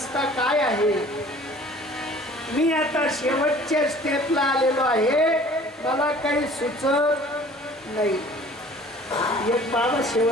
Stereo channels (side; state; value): both; normal; correlation 0.49